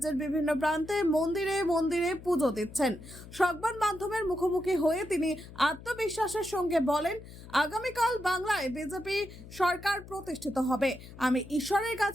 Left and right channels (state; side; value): noise; left; hum, 16 dB below the sound